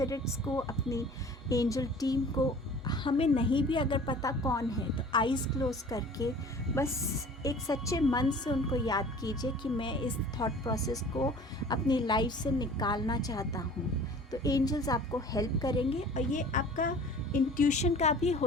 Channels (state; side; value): normal; both; correlation 0.46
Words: को, अपनी एंजल टीम को, हमें नहीं भी अगर पता कौन है तो आइज़ क्लोज करके बस एक सच्चे मन से उनको याद कीजिए कि मैं इस थॉट प्रोसेस को अपनी लाइफ से निकालना चाहता हूँ, तो एंजल्स आपको हेल्प करेंगे। और ये आपका इंट्यूशन का भी